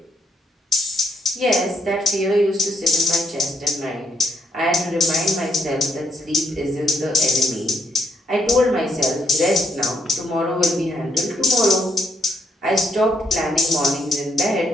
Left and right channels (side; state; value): both; normal; correlation 0.71